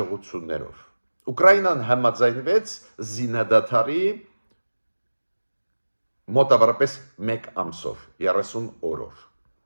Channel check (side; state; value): both; inverted; correlation -1.00